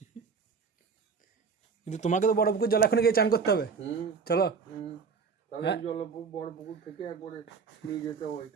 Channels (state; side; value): quieter; left; 5.5 dB